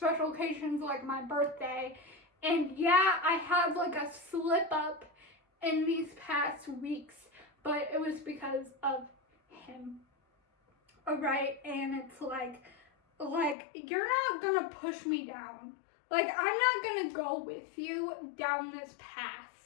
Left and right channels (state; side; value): drops out; right; at 13.6 s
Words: occasions like my birthday. And yeah, I have like a slip up in these past weeks, but it was because of him. Alright, and it's like you're not gonna push me down. Like, I'm not gonna go with you down this